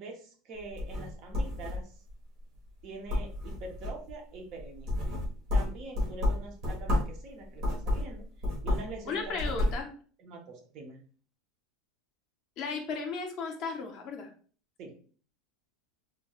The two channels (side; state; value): both; normal; correlation 0.69